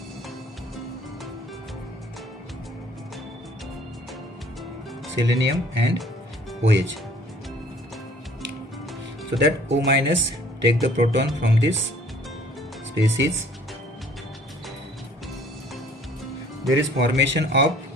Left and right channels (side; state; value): both; normal; correlation 0.55